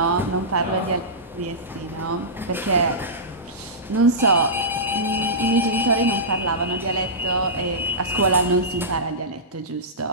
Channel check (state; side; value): normal; both; correlation -0.17